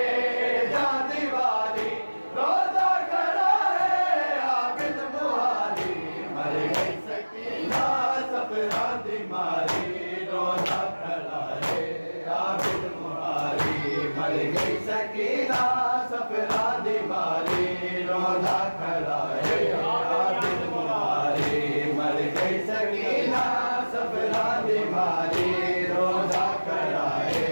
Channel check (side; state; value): both; inverted; correlation -1.00